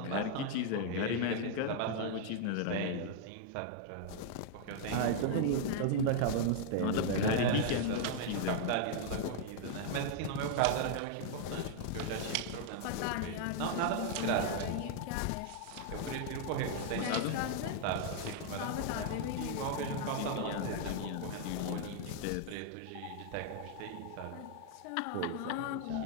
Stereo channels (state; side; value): different; both; correlation 0.00